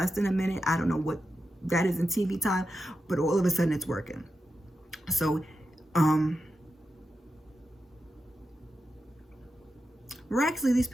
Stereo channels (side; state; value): both; normal; correlation 0.89